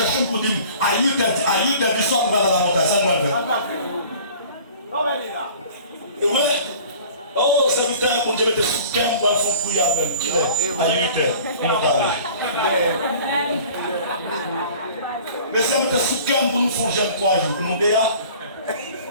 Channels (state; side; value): inverted; both; correlation -0.46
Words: pour dire à 8h du soir, on va dans la montagne, ça doit le faire. Et ouais, oh, c'est 8h, pour Dieu mettre sous 15 pour faire fond pour y aller même. À 8h, on est allé. Mais ça mettre sous 15 pour nous faire jeune 3 jours, pour nous dire.